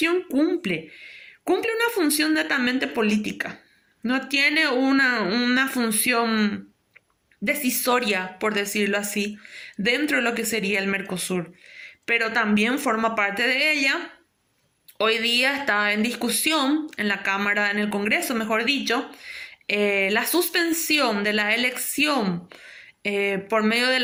cumple? Cumple una función netamente política. No tiene una función decisoria, por decirlo así, dentro de lo que sería el Mercosur. Pero también forma parte de ella. Hoy día está en discusión en la Cámara, en el Congreso, mejor dicho, la suspensión de la elección por medio de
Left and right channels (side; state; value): both; identical; correlation 1.00